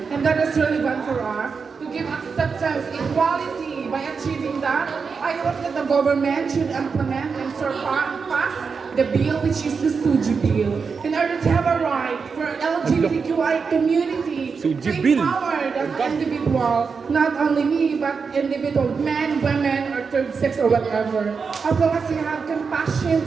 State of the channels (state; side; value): quieter; left; 5.4 dB